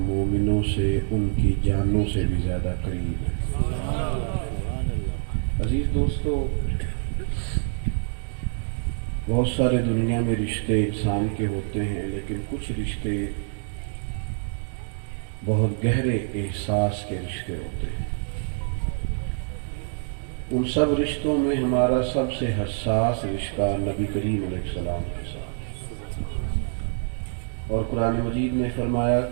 مومنوں سے ان کی جانوں سے بھی زیادہ قریب ہیں۔ عزیز دوستو، بہت سارے دنیا میں رشتے انسان کے ہوتے ہیں، لیکن کچھ رشتے بہت گہرے احساس کے رشتے ہوتے ہیں۔ ان سب رشتوں میں ہمارا سب سے حساس رشتہ نبی کریم علیہ السلام کے ساتھ، اور قرآن مجید نے فرمایا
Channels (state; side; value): silent; left; digital silence